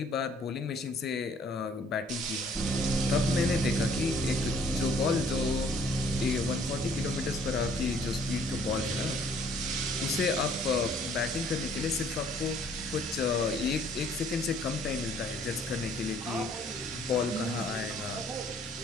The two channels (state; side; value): normal; both; correlation 0.60